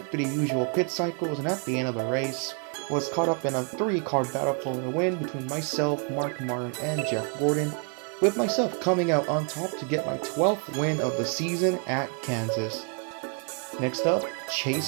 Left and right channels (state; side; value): quieter; left; 39.1 dB